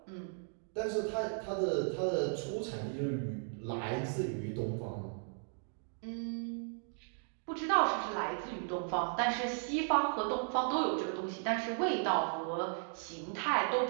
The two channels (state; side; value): silent; left; 54 dB below the other